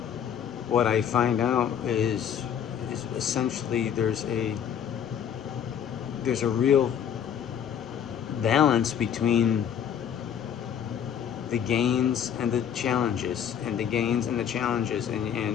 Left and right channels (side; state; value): right; quieter; 8.7 dB